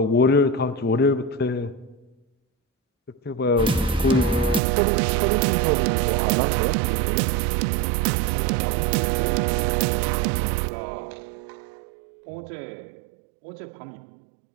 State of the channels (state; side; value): drops out; left; at 4.6 s